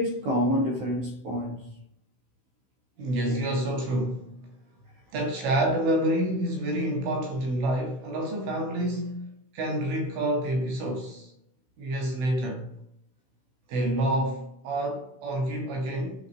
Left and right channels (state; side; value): late; left; 16 ms